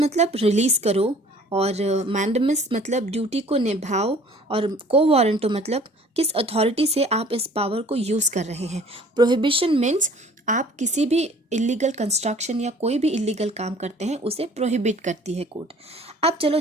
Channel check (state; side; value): normal; both; correlation 0.52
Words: रिलीज करो, और मैंडेमस मतलब ड्यूटी को निभाओ, और को वारंटो मतलब किस अथॉरिटी से आप इस पावर को यूज़ कर रहे हैं। प्रोहिबिशन मीन्स आप किसी भी इलीगल कंस्ट्रक्शन या कोई भी इलीगल काम करते हैं उसे प्रोहिबिट करती है कोर्ट। अब चलो